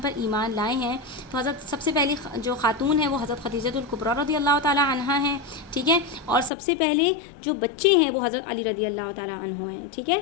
پر ایمان لائے ہیں، تو حضرت سب سے پہلی جو خاتون ہے وہ حضرت خدیجہ الکبریٰ رضی اللہ تعالیٰ عنہا ہیں، ٹھیک ہے؟ اور سب سے پہلے جو بچے ہیں وہ حضرت علی رضی اللہ تعالیٰ عنہ ہیں، ٹھیک ہے؟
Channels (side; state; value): right; drops out; at 6.5 s